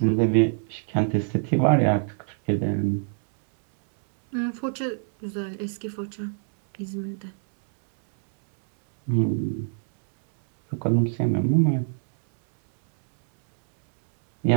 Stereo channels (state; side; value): silent; left; 62 dB below the other